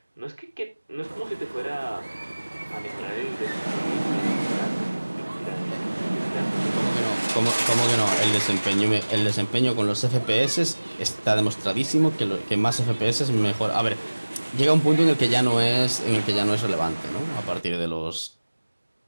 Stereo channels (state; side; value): inverted; both; correlation -1.00